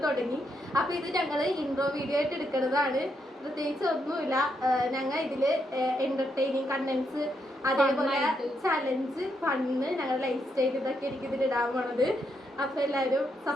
തുടങ്ങി. അപ്പൊ ഇത് ഞങ്ങൾ ഇൻട്രോ വീഡിയോ ആയിട്ട് എടുക്കുന്നതാണ്. പ്രത്യേകിച്ച് ഒന്നുമില്ല. ഞങ്ങൾ ഇതില് എന്റർടൈനിങ് കണ്ടന്റ്സ്, അതേപോലെ ചലഞ്ച്, ഫണ്ണ്, ഞങ്ങളുടെ ലൈഫ് സ്റ്റൈൽ ഇതൊക്കെ എനിക്ക് ഇതിൽ ഇടാൻ പോണത്. അപ്പൊ എല്ലാവരും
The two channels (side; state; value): both; normal; correlation 0.79